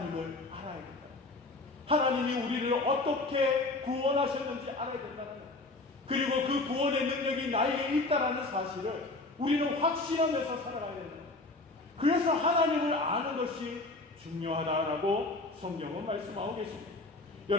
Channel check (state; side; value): quieter; right; 3.1 dB